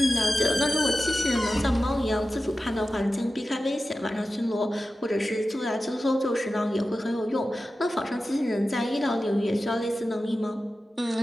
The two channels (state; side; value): normal; both; correlation 0.94